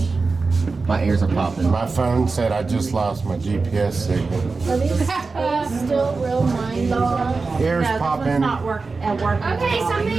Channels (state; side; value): quieter; left; 4.1 dB